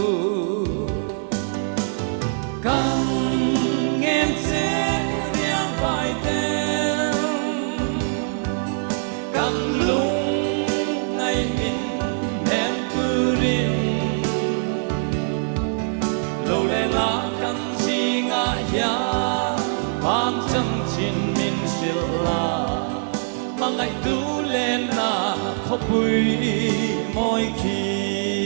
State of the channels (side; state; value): left; silent; 64 dB below the other